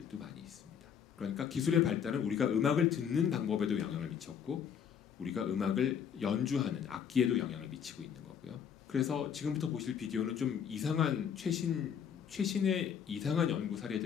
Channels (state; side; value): quieter; right; 7.9 dB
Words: 많이 있습니다. 그러니까 기술의 발달은 우리가 음악을 듣는 방법에도 영향을 미쳤고 우리가 음악을 연주하는 악기에도 영향을 미치고 있는 거고요. 그래서 지금부터 보실 비디오는 좀 이상한 최신의 이상한 연구